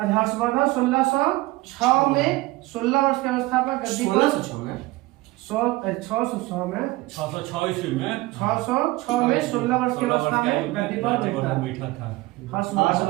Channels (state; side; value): quieter; left; 19.9 dB